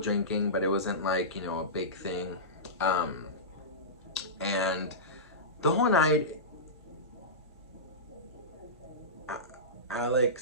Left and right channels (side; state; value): both; normal; correlation -0.18